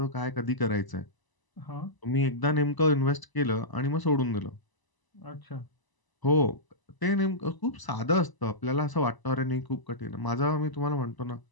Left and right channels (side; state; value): right; late; 1.0 ms